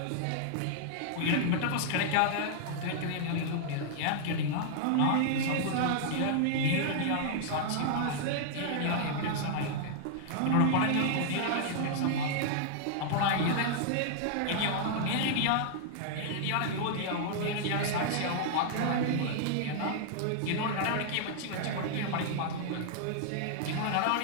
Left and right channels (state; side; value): different; both; correlation -0.01